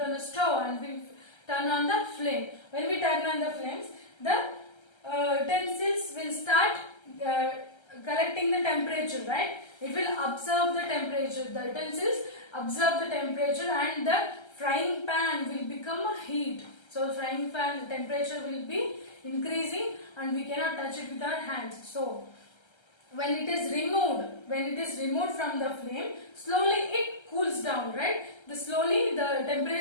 on a stove and we turn on the flame. When we turn on the flames, the utensils will start collecting the temperature, right? It will observe the temperature. The utensils observe the temperature and the frying pan will become a heat. So frying pan temperature will be increasing and we cannot touch it with our hands. So when it is removed from the flame, slowly it cools down, right? Slowly the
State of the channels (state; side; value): late; right; 1.3 ms